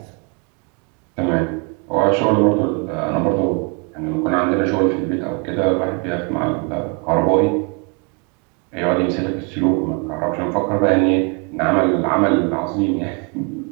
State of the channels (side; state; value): left; quieter; 32.2 dB